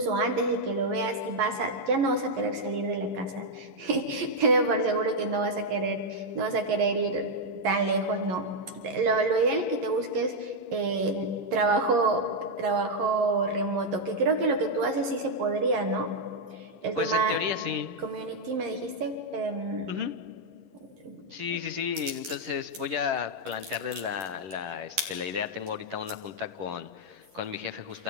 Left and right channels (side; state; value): left; late; 11 ms